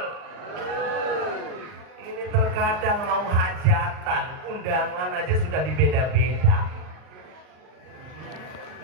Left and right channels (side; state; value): left; late; 39 ms